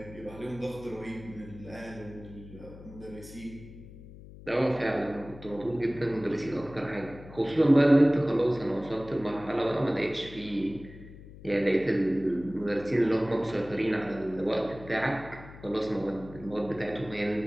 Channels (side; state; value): left; noise; hum, 17 dB below the sound